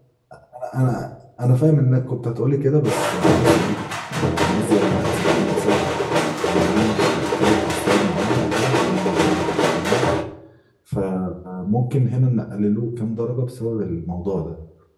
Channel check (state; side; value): identical; both; correlation 1.00